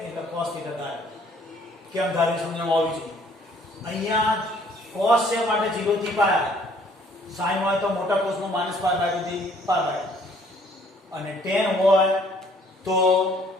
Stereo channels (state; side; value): normal; both; correlation 0.60